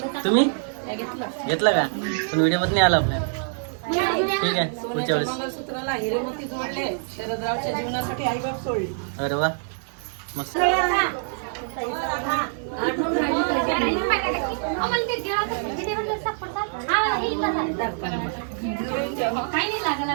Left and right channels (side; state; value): left; silent; 62 dB below the other